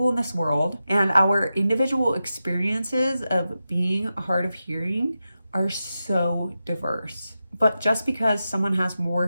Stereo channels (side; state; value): both; inverted; correlation -0.91